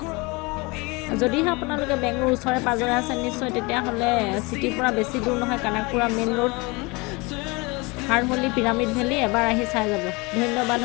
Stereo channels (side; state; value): right; quieter; 26.2 dB